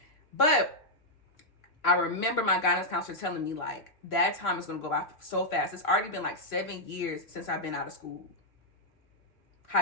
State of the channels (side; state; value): right; late; 2.9 ms